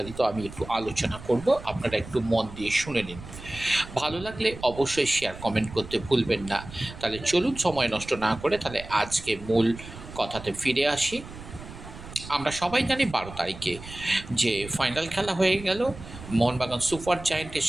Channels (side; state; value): right; noise; rumble, 14 dB below the sound